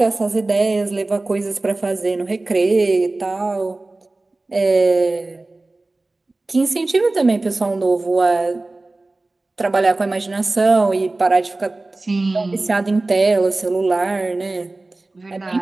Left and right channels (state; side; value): quieter; left; 3.1 dB